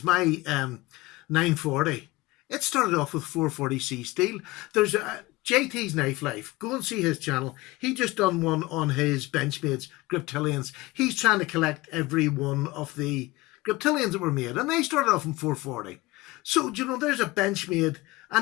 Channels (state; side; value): quieter; right; 20.9 dB